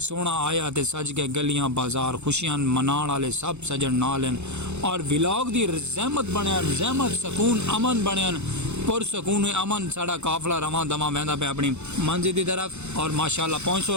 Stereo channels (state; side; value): late; left; 0.82 ms